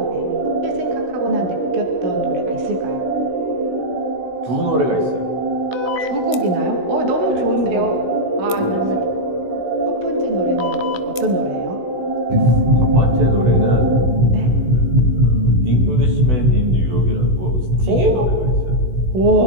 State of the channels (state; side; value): late; left; 16 ms